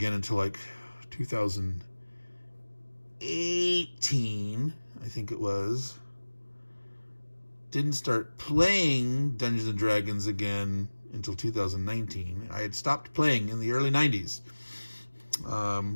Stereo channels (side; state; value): both; inverted; correlation -1.00